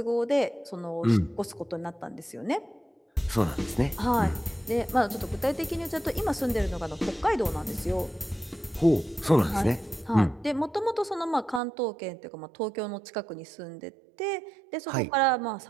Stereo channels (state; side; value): drops out; left; at 11.6 s